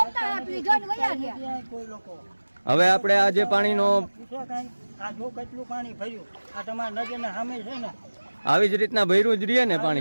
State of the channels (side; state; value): both; inverted; correlation -1.00